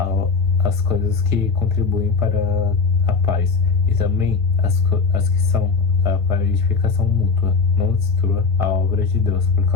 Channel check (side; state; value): right; quieter; 4.7 dB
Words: as coisas que contribuem para a paz, e também as que são para a edificação mútua. Não destrua a obra de Deus por